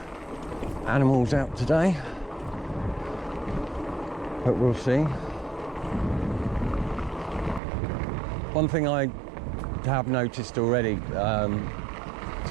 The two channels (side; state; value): left; drops out; at 7.6 s